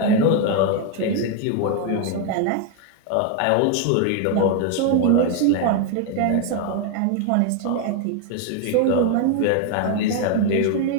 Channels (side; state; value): both; different; correlation 0.01